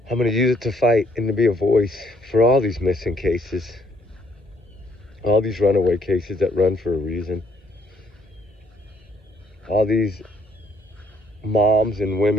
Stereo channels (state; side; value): normal; both; correlation 0.67